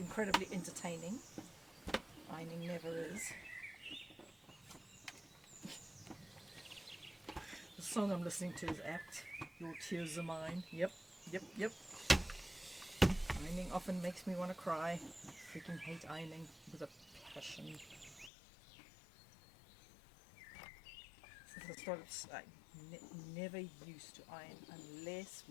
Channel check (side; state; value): right; drops out; at 18.3 s